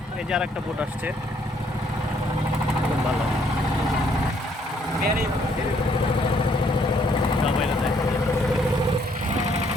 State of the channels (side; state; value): both; normal; correlation 0.67